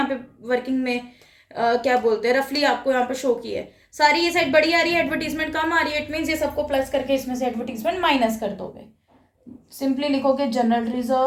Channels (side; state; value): both; identical; correlation 1.00